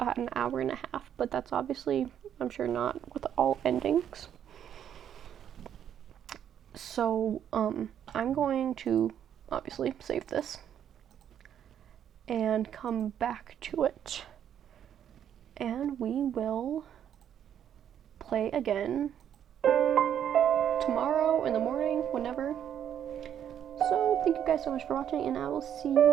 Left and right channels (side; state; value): left; quieter; 9.5 dB